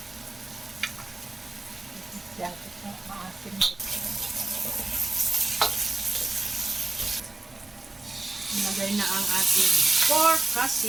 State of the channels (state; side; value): quieter; left; 3.0 dB